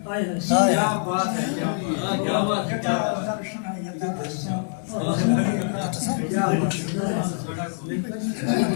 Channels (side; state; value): right; silent; 62 dB below the other